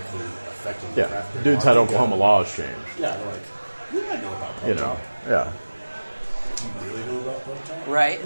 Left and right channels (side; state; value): both; inverted; correlation -1.00